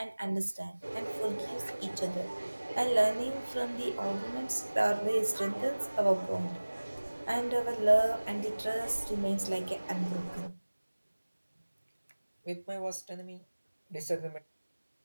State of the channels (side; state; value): both; inverted; correlation -1.00